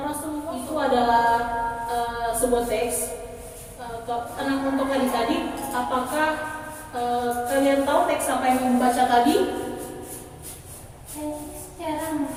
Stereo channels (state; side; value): identical; both; correlation 1.00